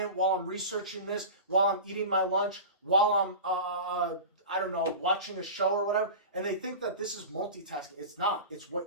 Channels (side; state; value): both; inverted; correlation -0.30